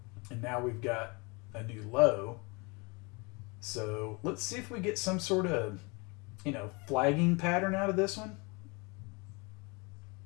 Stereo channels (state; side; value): quieter; right; 29.2 dB